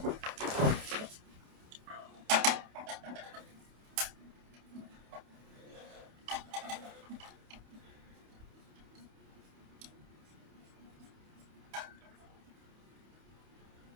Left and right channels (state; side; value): late; left; 28 ms